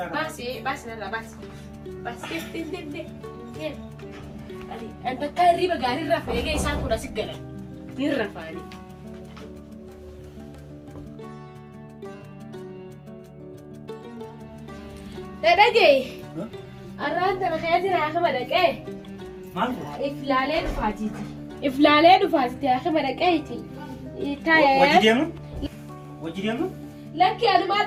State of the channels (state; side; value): identical; both; correlation 1.00